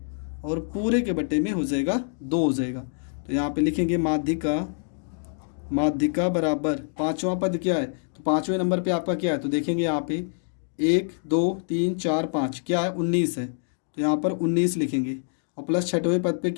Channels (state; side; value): silent; right; digital silence